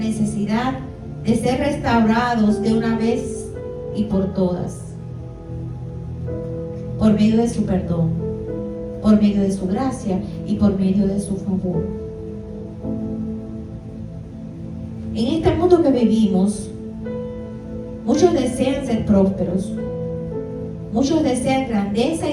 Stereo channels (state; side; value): identical; both; correlation 1.00